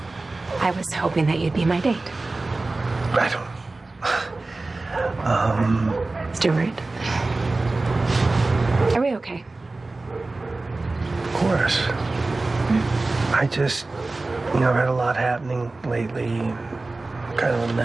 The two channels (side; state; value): left; quieter; 3.3 dB